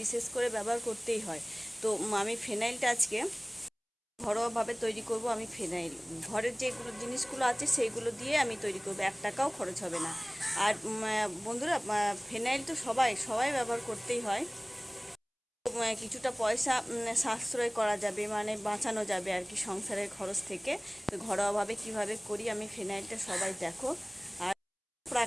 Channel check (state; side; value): identical; both; correlation 1.00